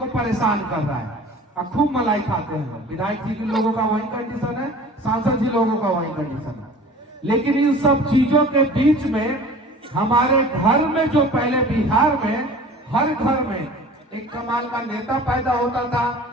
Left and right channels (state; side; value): normal; both; correlation 0.44